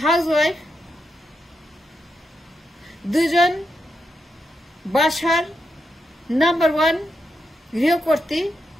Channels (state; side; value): normal; both; correlation 0.84